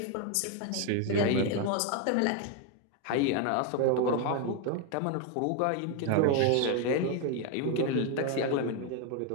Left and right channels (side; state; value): both; different; correlation 0.01